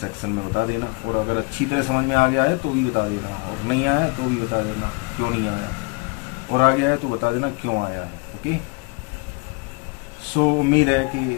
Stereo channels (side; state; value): right; quieter; 28.0 dB